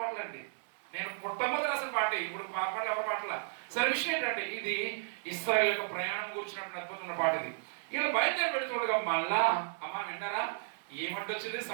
నేను మొట్టమొదటి రాసిన పాట, ఇప్పుడు పాటలు ఎవరి పాటల. సరే విషయం ఏంటంటే ఇది ఇశ్రాయేలు యొక్క ప్రయాణం కూర్చున్నప్పుడు అద్భుతమైన పాట ఇది. ఇలా బయలుదేరి పెడుతుండగా మళ్ళా విన్నారా ఏమంటే వచ్చింది,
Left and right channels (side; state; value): left; silent; digital silence